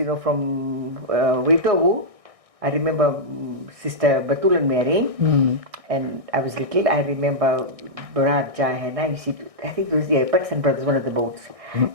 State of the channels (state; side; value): late; left; 1.6 ms